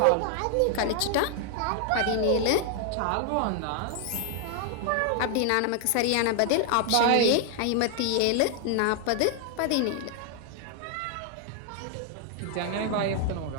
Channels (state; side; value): different; both; correlation 0.00